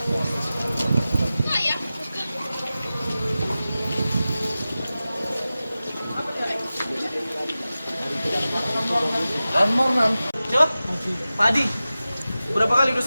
Mornan. Siapa? Pak Adi. Berapa kali? Udah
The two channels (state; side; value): inverted; both; correlation -0.95